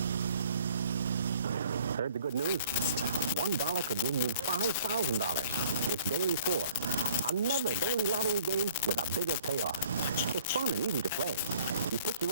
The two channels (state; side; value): inverted; both; correlation -0.56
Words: Heard the good news? $1 could win you $5,000. It's daily 4. Another daily lottery game with a bigger payoff. It's fun and easy to play. You pick